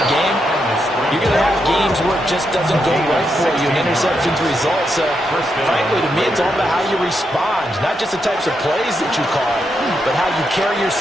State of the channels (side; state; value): both; normal; correlation 0.82